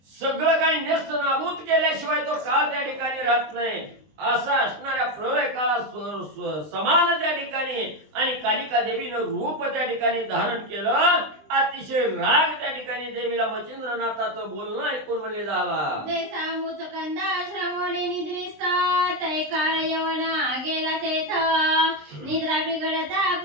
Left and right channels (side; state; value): left; late; 20 ms